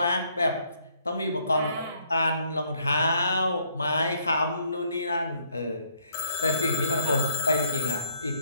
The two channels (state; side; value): inverted; both; correlation -0.68